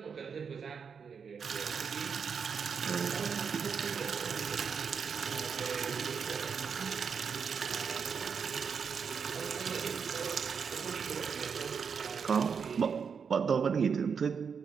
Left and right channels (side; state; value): left; quieter; 6.3 dB